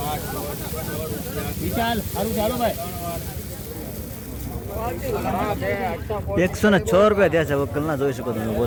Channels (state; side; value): identical; both; correlation 1.00